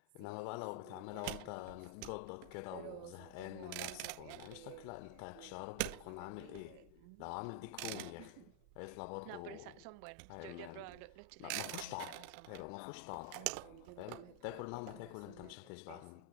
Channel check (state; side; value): different; both; correlation 0.00